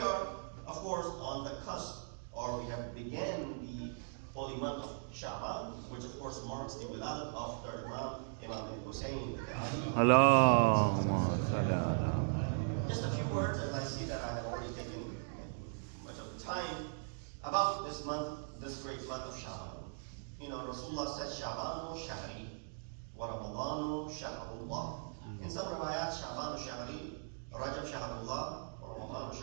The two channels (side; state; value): left; silent; digital silence